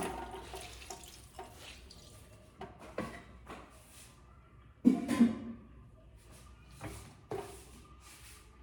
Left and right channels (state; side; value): identical; both; correlation 1.00